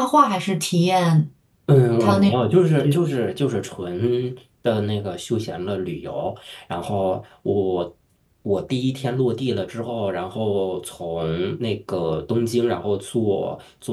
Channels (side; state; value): both; identical; correlation 1.00